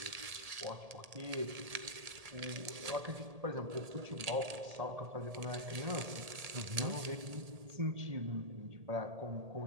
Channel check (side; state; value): left; late; 1.8 ms